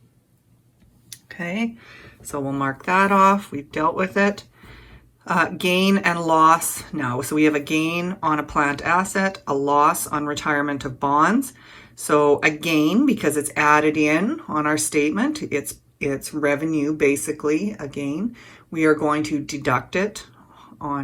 Okay, so we'll mark that off. We've dealt with it. Gain and loss now. So we have a gain on a plant asset, a loss on retirement of bonds. So a gain, because it's added in on our statement, it's revenue, basically, a gain. We are going to deduct it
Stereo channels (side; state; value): both; identical; correlation 1.00